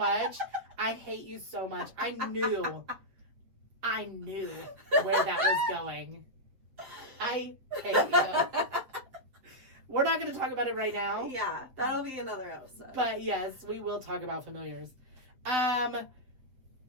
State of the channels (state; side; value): late; left; 7.5 ms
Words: I hate you so much. I knew where that was going. I hate you. We're not going to talk about it right now. Yeah, that'll be another episode. But yes, we will talk about familiars.